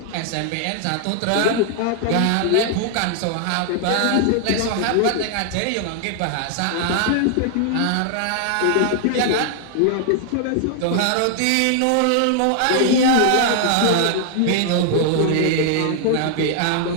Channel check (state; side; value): different; both; correlation 0.00